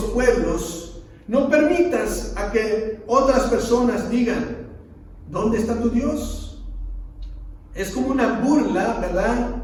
pueblos, no permitas a que otras personas digan, ¿dónde está tu Dios? Es como una burla, ¿verdad?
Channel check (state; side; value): identical; both; correlation 1.00